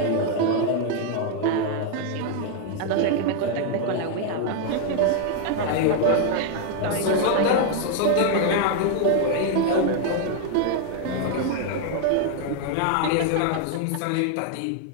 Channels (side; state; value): both; different; correlation 0.00